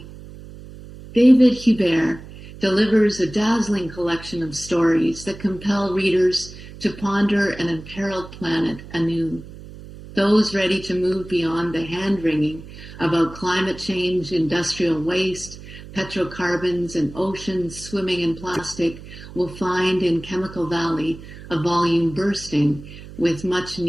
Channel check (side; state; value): right; noise; hum, 16 dB below the sound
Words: David Hubert delivers a dazzling collection of stories that compel readers to ponder an imperiled planet anew. Those ready to move beyond the hand-wringing about climate change, industrial waste, petrocarbons, and oceans swimming in plastic will find in Chemical Valley a volume bursting with